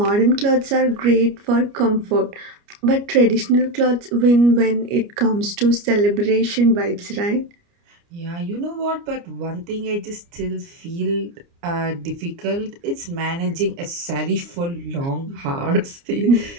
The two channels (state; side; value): late; left; 29 ms